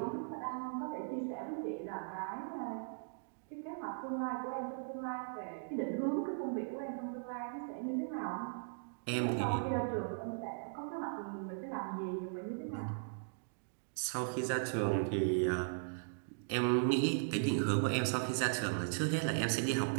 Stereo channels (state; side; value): silent; left; digital silence